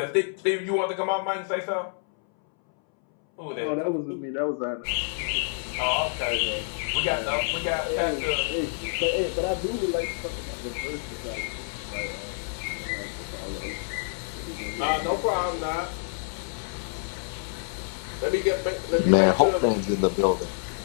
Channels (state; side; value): silent; right; 60 dB below the other